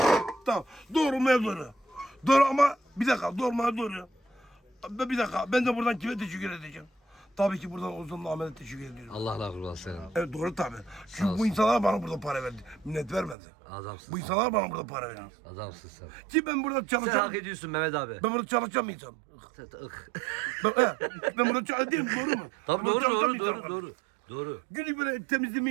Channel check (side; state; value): left; drops out; at 13.4 s